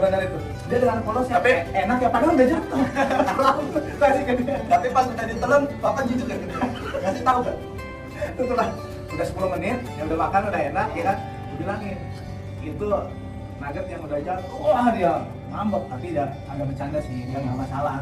itu. Dia dengan polosnya, Tapi enak ya, padahal udah jatuh. Kasih ke dia. Tapi pas udah ditelan, bapak jujur kan? Kasih tahu kan? Itulah, udah 10 menit, yang udah makan udah enak ya kan? Gue bilangin, itu nugget yang udah jatuh, wah dia ngambek, tapi dia agak bercanda sih, dia nggak masalah,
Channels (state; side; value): identical; both; correlation 1.00